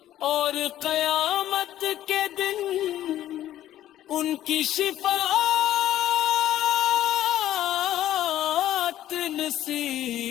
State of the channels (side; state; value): right; quieter; 12.8 dB